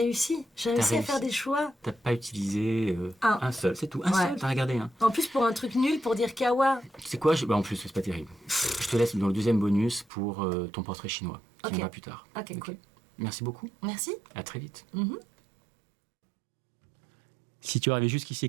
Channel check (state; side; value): drops out; left; at 10.1 s